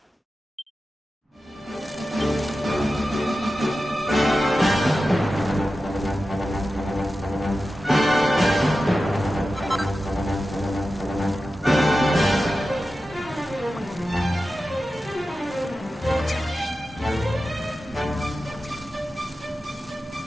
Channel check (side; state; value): both; normal; correlation 0.93